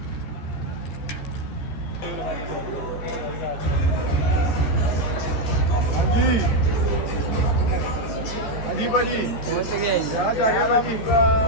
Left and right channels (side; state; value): right; late; 14 ms